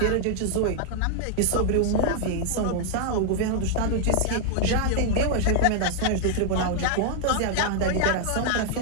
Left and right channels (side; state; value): both; different; correlation 0.00